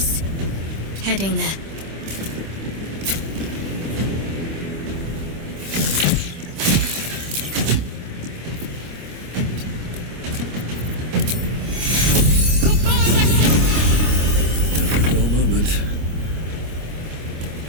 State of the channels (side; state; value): left; late; 26 ms